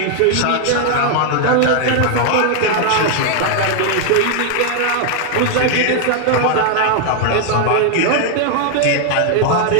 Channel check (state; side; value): different; both; correlation 0.00